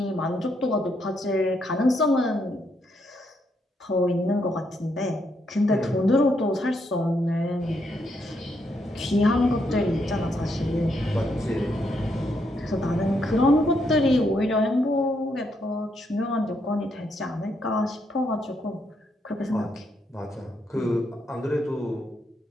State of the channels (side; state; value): both; normal; correlation 0.77